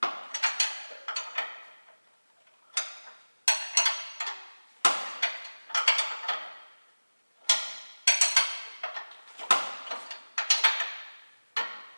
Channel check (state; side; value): inverted; both; correlation -1.00